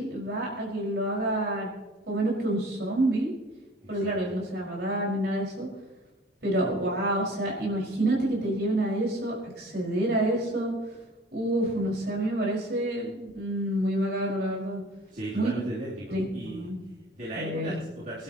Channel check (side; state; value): both; normal; correlation 0.46